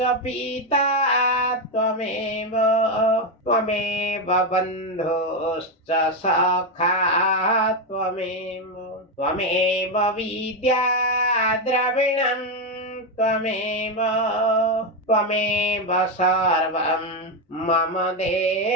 पिता त्वमेव बन्धुश्च सखा त्वमेव विद्या द्रविणं त्वमेव सर्वं मम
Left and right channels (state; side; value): normal; both; correlation 0.08